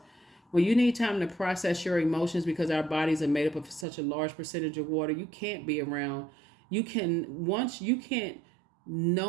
When you need time to process your emotions, because our bodies are made up of such a large percentage of water, you can't be around. You can't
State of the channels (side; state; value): left; drops out; at 3.9 s